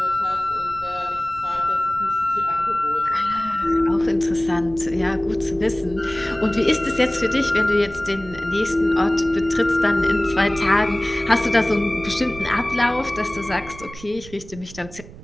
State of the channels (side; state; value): right; noise; rumble, 17 dB below the sound